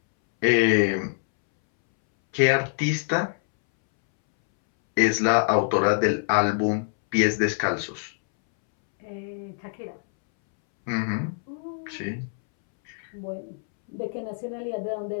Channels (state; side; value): silent; right; 62 dB below the other